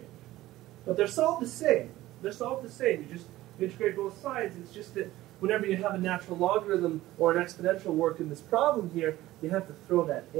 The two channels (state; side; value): quieter; left; 16.2 dB